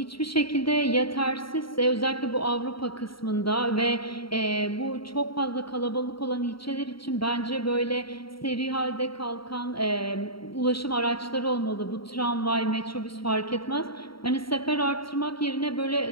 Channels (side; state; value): right; late; 0.74 ms